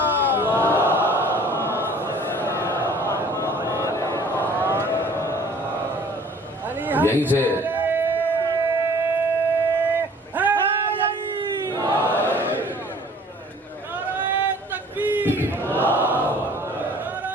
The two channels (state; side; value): normal; both; correlation 0.52